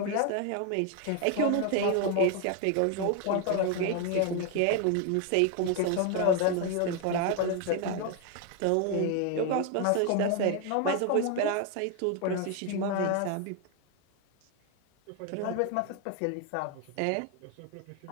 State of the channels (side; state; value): both; different; correlation 0.01